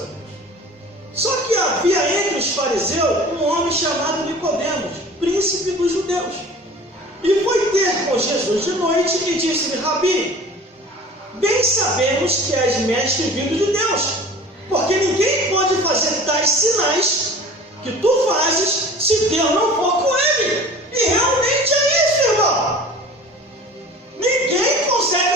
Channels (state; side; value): normal; both; correlation 0.42